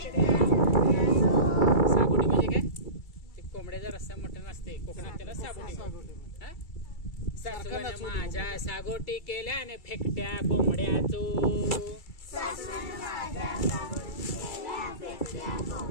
सागोटी म्हणजे काय ते कोंबड्याचा रस्सा मटण असते कोकणात त्याला सागोटी सासवण माझ्या सागोटी केल्याने फेकट्या कोंबड्याचो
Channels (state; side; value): late; right; 2.3 ms